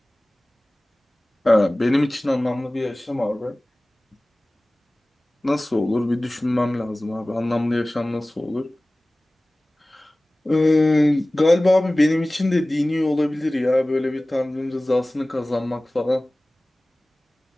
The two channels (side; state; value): both; normal; correlation 0.98